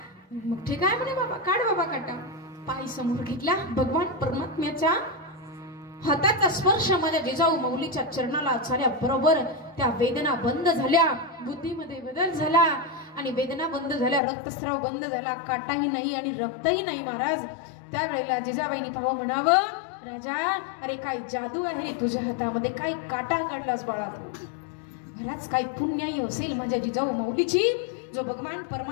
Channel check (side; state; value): right; drops out; at 14.2 s